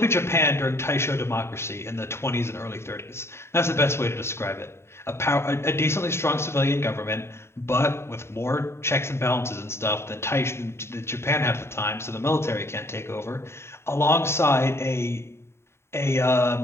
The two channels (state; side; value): late; right; 0.12 ms